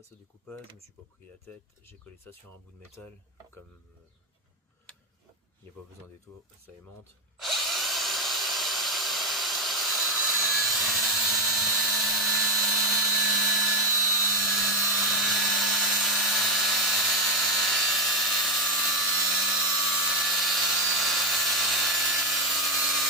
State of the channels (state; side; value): normal; both; correlation 0.07